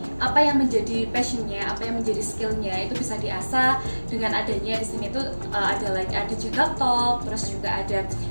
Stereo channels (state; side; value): inverted; both; correlation -1.00